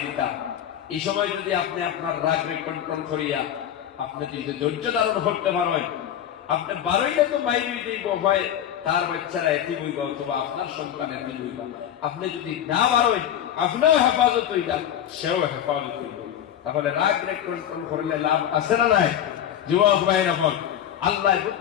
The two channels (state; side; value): quieter; right; 10.3 dB